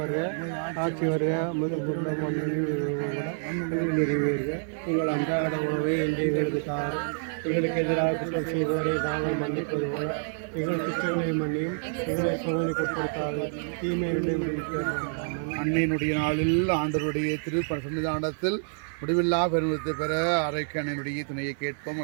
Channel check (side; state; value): left; silent; 58 dB below the other